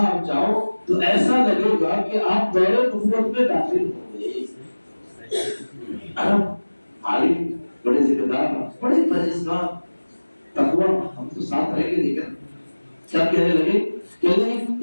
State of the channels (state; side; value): inverted; both; correlation -1.00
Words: آپ جاؤ تو ایسا لگے گا کہ آپ دور نبوت میں داخل ہو گئے. عرب عالم بڑے ذمہ دار بڑے پرہیزگار تقوی ہم تو ساتھ رہ کے لیکن کیا کہنے لگے کہنے